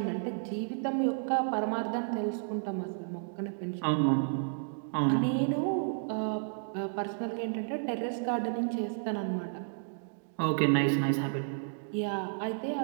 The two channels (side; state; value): left; silent; digital silence